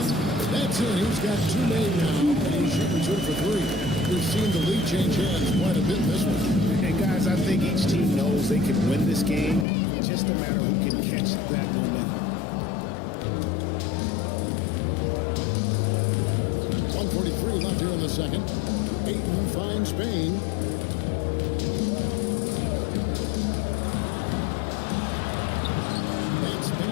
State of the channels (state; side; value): drops out; right; at 9.7 s